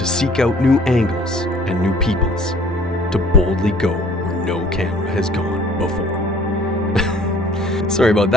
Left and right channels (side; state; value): both; normal; correlation 0.54